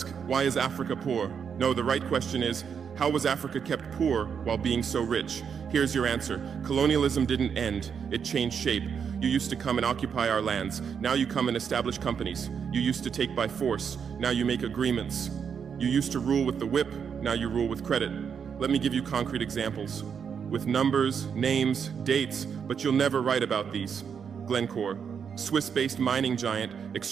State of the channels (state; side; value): quieter; left; 7.0 dB